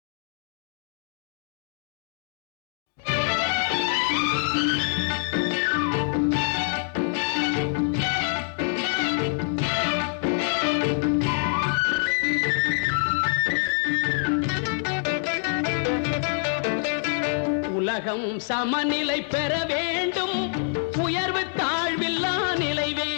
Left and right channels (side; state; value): right; silent; 61 dB below the other